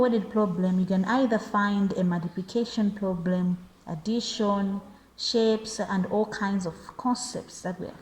problem, you can either find a multiplication problem, addition, shapes, and all kinds of concepts that we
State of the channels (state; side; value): identical; both; correlation 1.00